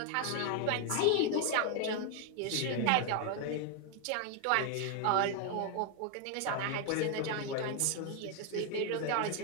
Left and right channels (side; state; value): both; different; correlation 0.01